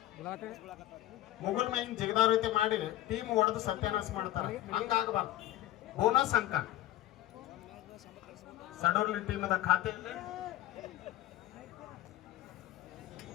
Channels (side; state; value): right; quieter; 14.5 dB